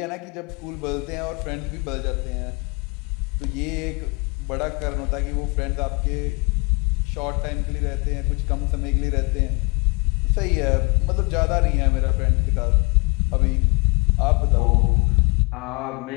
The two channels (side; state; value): right; quieter; 30.1 dB